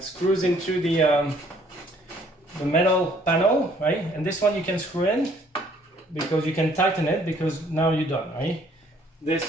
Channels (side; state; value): both; normal; correlation 0.61